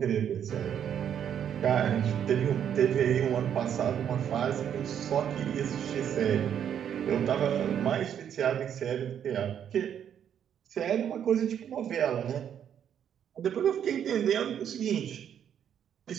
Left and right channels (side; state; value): left; quieter; 9.1 dB